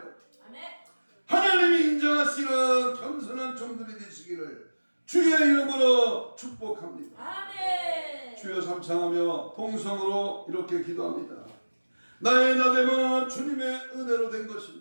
하나님이 인정하시는 겸손한 종들이 되시기를 주의 이름으로 축복합니다. 아멘. 주여 삼창하며 통성으로 이렇게 기도합니다. 나의 나됨은 주님의 은혜로 된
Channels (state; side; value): inverted; both; correlation -1.00